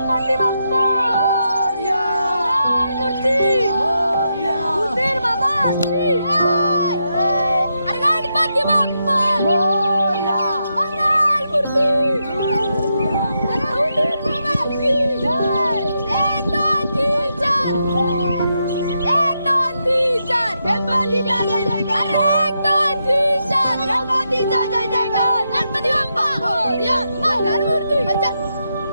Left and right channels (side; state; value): both; inverted; correlation -0.83